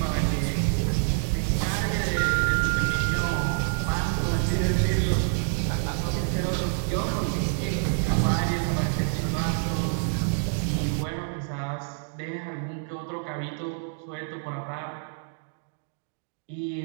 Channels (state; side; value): silent; left; digital silence